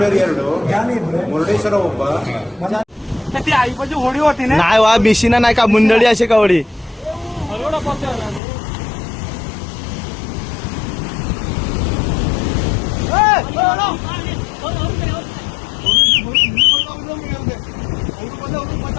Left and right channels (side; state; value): right; drops out; at 8.4 s